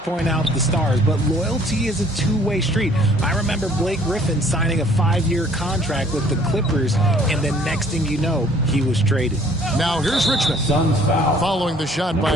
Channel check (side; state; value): both; normal; correlation 0.57